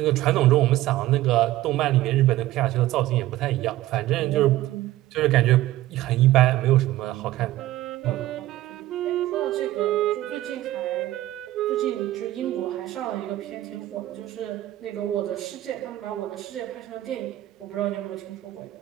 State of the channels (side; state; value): left; quieter; 15.5 dB